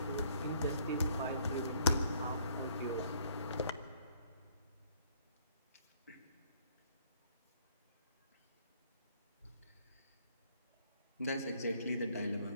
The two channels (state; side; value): inverted; both; correlation -0.63